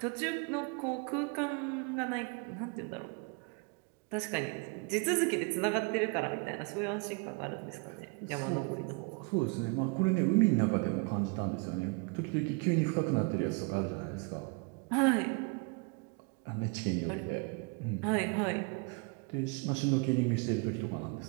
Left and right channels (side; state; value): left; quieter; 32.1 dB